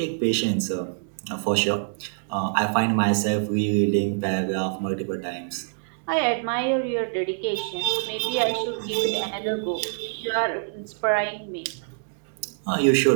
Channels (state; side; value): silent; left; digital silence